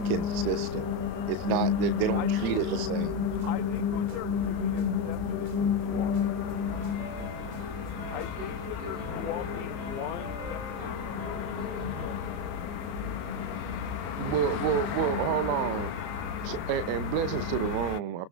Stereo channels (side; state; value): left; late; 34 ms